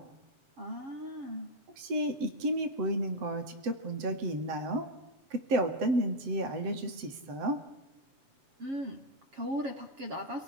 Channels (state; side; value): late; left; 7.7 ms